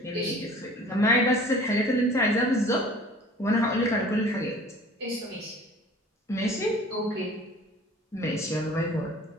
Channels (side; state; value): both; normal; correlation 0.48